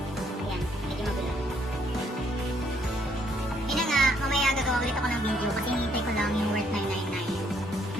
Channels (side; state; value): both; normal; correlation 0.69